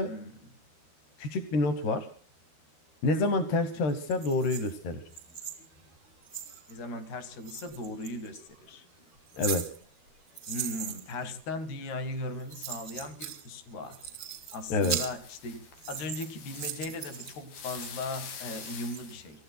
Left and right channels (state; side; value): late; right; 13 ms